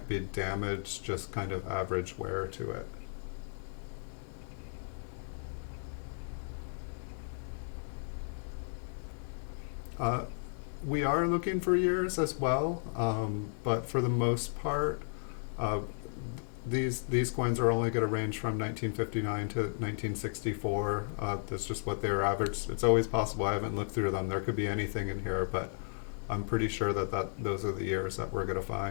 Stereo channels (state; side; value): silent; right; digital silence